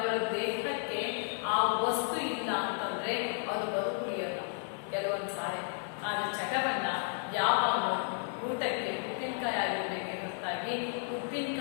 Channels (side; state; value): right; silent; 56 dB below the other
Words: ದೇಹಕ್ಕೆ ಆ ವಸ್ತು ಇಲ್ಲ ಅಂತಂದ್ರೆ ಅವರು ಬದುಕುಳಿಯಲ್ಲ ಕೆಲವೊಂದು ಸಾರಿ. ಆದ್ರೆ ಚಟವನ್ನ ಯಾವಾಗ ಊಟಕ್ಕೆ ಉಪ್ಪಿನಕಾಯಿ ಆಗಿರ್ಬೇಕೆ ಹೊರತಾಗಿ